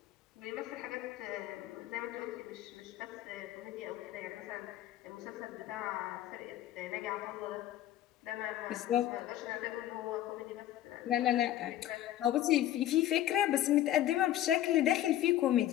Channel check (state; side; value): quieter; right; 12.9 dB